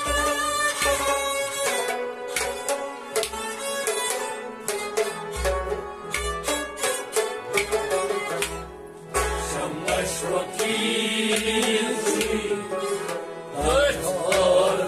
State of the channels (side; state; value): both; identical; correlation 1.00